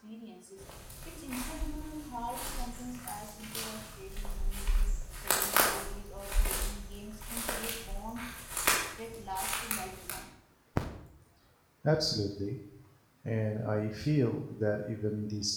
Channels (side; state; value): both; identical; correlation 1.00